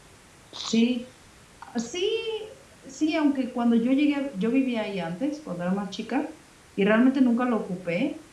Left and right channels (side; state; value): both; identical; correlation 1.00